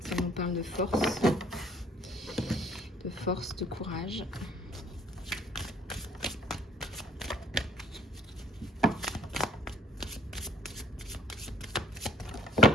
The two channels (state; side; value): normal; both; correlation 0.59